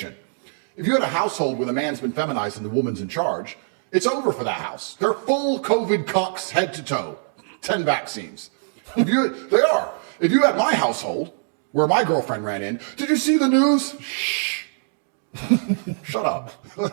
If you had a household where the man's been feminized and the woman's in charge, it's over for that house. They're full COVID cucks head to toe. 10 vaccines. They are. If you had my household, where my girlfriend ran in, did you see the news? Shh. Shut up.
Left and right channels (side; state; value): left; silent; digital silence